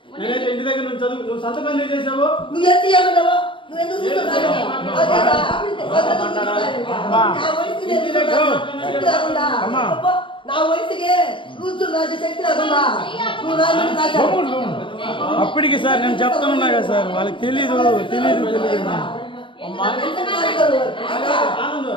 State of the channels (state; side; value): late; right; 0.25 ms